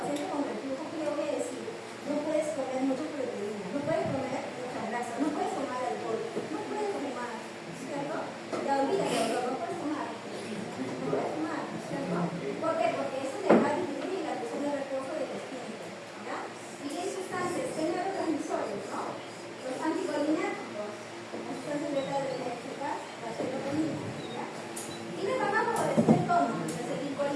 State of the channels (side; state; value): both; identical; correlation 1.00